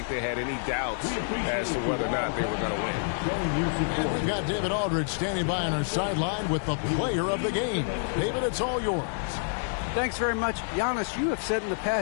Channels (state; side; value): silent; right; 57 dB below the other